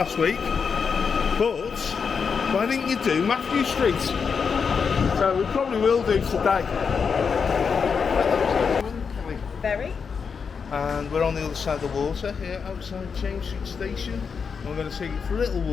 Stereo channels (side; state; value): right; quieter; 5.9 dB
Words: week, but why didn't you do Matthew Street? So we probably will do today. Very. And we're on the other side of the water here outside James Street Station. And we're going to take you for a little